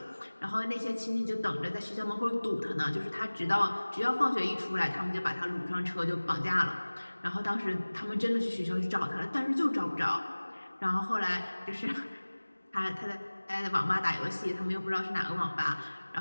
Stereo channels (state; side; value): inverted; both; correlation -1.00